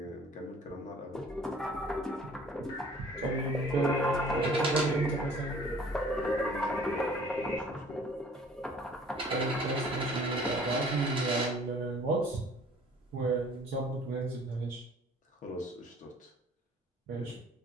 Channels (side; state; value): both; normal; correlation 0.53